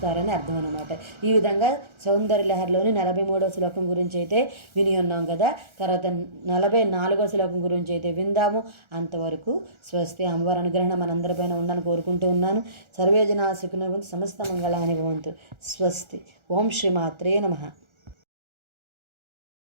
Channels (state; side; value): late; left; 1.4 ms